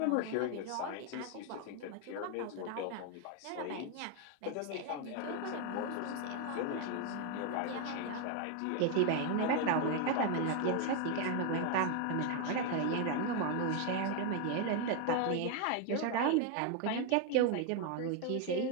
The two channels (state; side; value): different; both; correlation 0.01